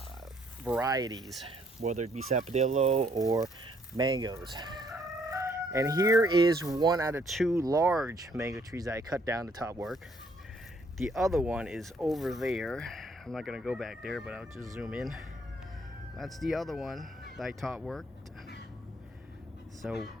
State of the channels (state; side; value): normal; both; correlation 0.66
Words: varieties, whether it be Sapodilla or mangoes. And here is 1 out of 2 large mango trees that I cut down to top work. The other one is over there. I'm not going to go back there, but I'll just zoom in. That's the other one that I top worked. So